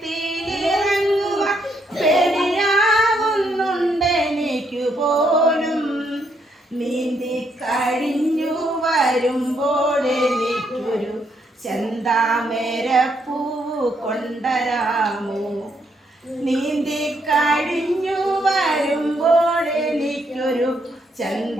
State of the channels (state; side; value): normal; both; correlation 0.75